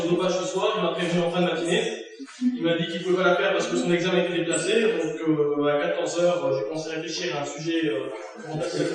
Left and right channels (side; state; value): both; identical; correlation 1.00